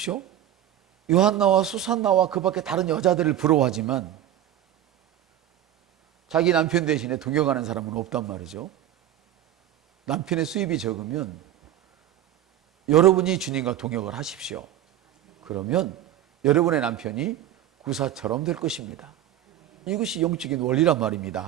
요한나와 수산나와 그 밖에 다른 여자들을 부러워하지만 자기 남편 대신에 동역하는 사람은 없단 말이죠. 남편의 수입이 적으면 여러분이 주님과 동역을 하십시오. 그러면 여러분의 남편이 구사처럼 될 것입니다. 이것이 영적인 원리란 말입니다.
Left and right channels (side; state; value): left; quieter; 11.8 dB